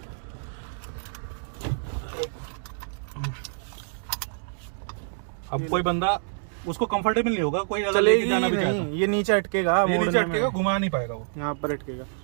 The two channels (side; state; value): left; silent; digital silence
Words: अब कोई बंदा उसको कंफर्टेबल नहीं होगा, कोई अगर लेके जाना भी चाहता है, ये नीचे अटकेगा, ये नीचे अटकेगा, घुमा नहीं पाएगा वो, यहाँ पर अटकेगा।